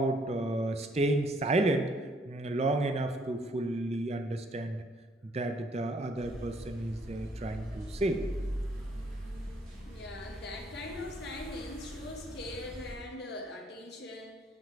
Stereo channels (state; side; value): normal; both; correlation 0.66